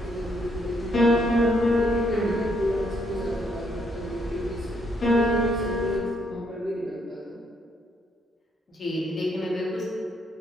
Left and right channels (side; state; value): both; normal; correlation 0.72